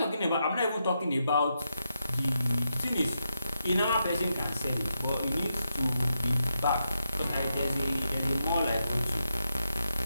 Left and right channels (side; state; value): both; inverted; correlation -0.84